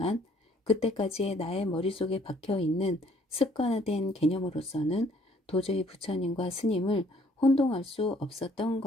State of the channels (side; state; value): both; normal; correlation 0.61